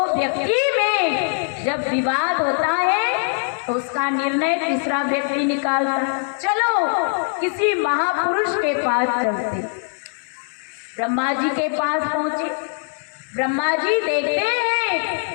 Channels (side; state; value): right; silent; 61 dB below the other